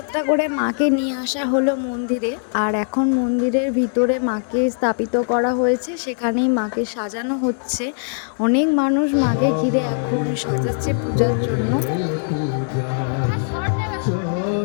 করে মাকে নিয়ে আসা হলো মন্দিরে, আর এখন মন্দিরের ভিতরে মাকে স্থাপিত করা হয়েছে, সেখানেই মাকে সাজানো হচ্ছে। অনেক মানুষ মাকে ঘিরে এখন সাজাচ্ছে পূজার জন্য।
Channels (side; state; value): right; silent; digital silence